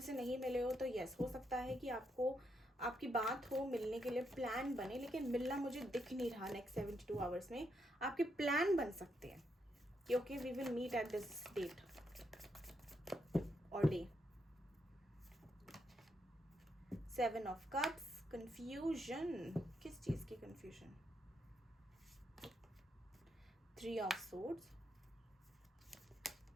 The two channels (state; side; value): normal; both; correlation 0.79